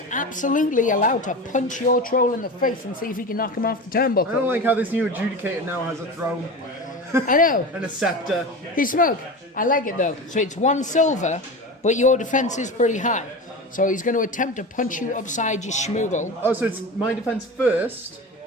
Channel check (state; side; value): normal; both; correlation 0.28